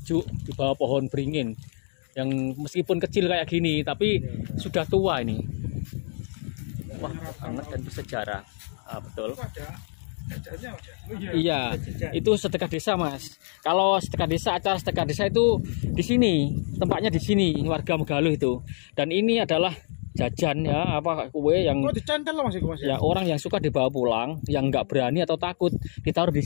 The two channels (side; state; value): right; silent; 61 dB below the other